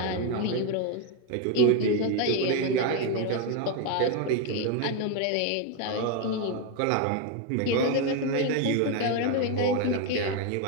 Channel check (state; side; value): different; both; correlation 0.02